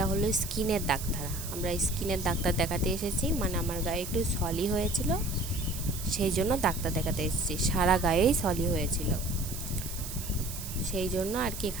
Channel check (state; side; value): noise; right; hiss, 9 dB below the sound